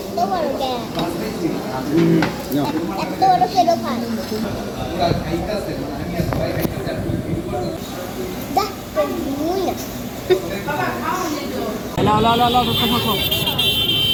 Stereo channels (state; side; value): identical; both; correlation 1.00